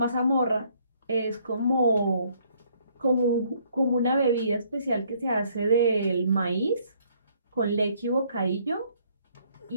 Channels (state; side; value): inverted; both; correlation -0.65